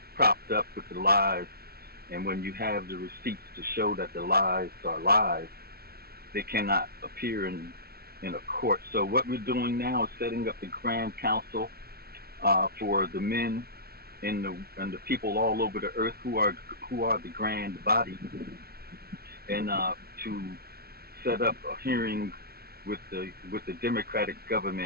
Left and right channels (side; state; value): left; late; 0.45 ms